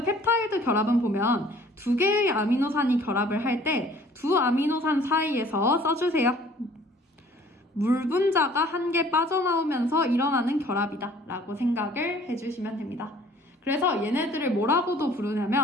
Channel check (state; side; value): normal; both; correlation 0.54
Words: 펩타이드 결합은 보면 두 개의 아미노산이 결합을 할 때 두 아미노산 사이에서 써주세요. 물 분자가 한 개 빠져나오면서 일어나는 결합이다 라고 생각을 해주시면 됩니다. 그래서 얘네들을 뭐라고도